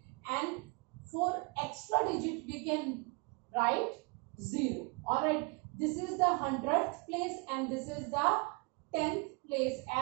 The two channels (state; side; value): quieter; left; 31.7 dB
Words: and for extra digit we can write 0. Alright, this is the 100th place and this is the 10th place.